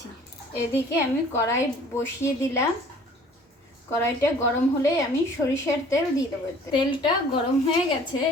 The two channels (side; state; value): both; normal; correlation 0.52